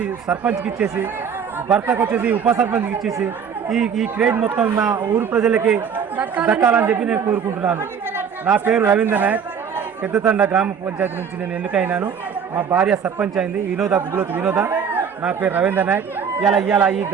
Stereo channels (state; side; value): quieter; left; 7.1 dB